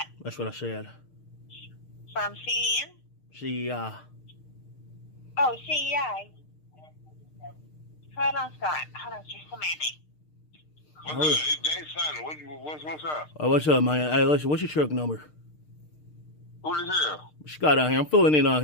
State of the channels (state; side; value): late; right; 6.6 ms